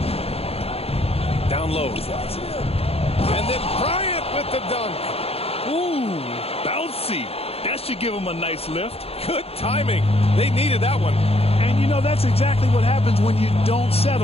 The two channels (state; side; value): late; right; 0.29 ms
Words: Down low. And then Bryant with the dunk. Ooh, bouncy. That should give him a nice lift. Good timing. They needed that one. And, you know, that's exactly what happens when you don't